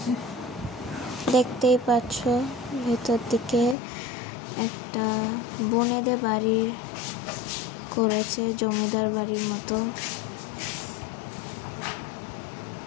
দেখতেই পাচ্ছ ভেতর দিকে একটা বনেদের বাড়ির করেছে, জমিদার বাড়ির মতো।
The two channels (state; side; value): drops out; right; at 3.8 s